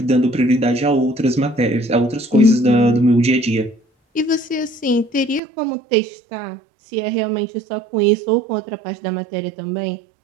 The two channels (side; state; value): left; drops out; at 5.4 s